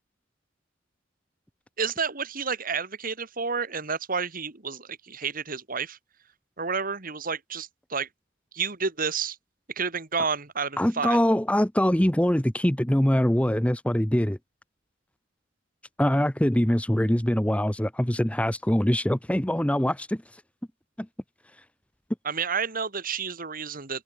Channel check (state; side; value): normal; both; correlation 0.75